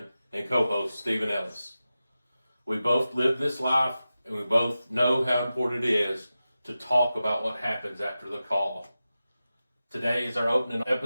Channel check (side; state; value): both; inverted; correlation -0.93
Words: and co-host, Stephen Ellis. We both live this life, and we both know how important it is to talk about what happens after the call. Today is our opening